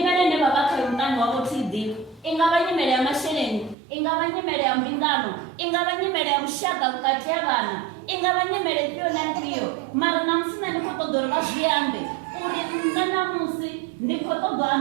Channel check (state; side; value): drops out; left; at 3.8 s